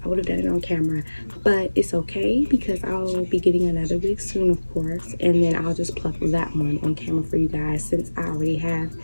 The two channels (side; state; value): both; inverted; correlation -1.00